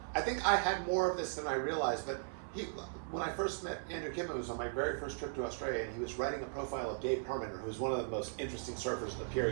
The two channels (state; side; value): silent; left; 53 dB below the other